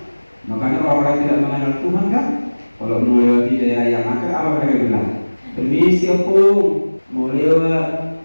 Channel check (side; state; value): both; inverted; correlation -1.00